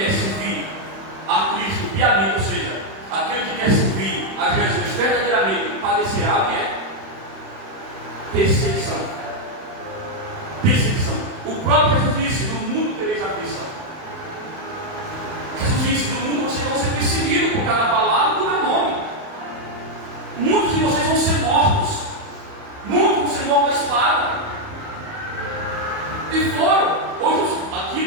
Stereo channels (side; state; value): left; late; 31 ms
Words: servir a Cristo piamente, ou seja, aquele que quer servir a Jesus verdadeiramente, padecerá o que é? Perseguição. Perseguição. O próprio Jesus disse: no mundo tereis aflição. Jesus disse: no mundo vocês vão ser perseguidos por cada palavra do meu nome. Muitos de vocês vão ser mortos. Muitos vão ser mortos à espada. E foram,